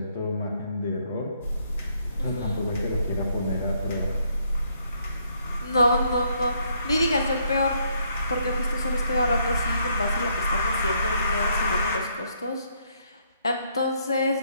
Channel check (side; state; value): both; inverted; correlation -0.71